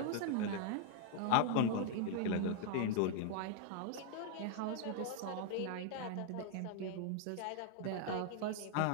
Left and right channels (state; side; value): different; both; correlation -0.01